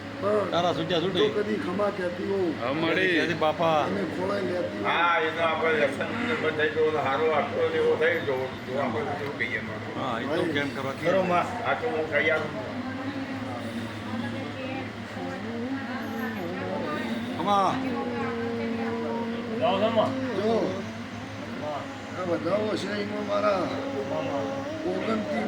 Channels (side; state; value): both; identical; correlation 1.00